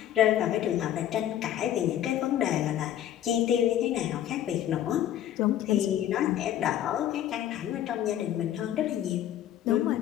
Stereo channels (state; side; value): quieter; right; 11.5 dB